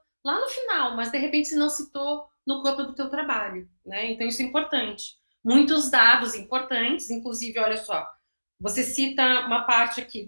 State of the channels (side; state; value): both; inverted; correlation -1.00